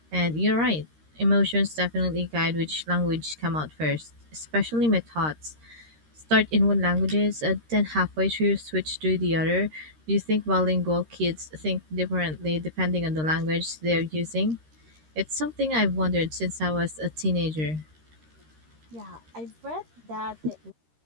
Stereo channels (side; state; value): left; late; 13 ms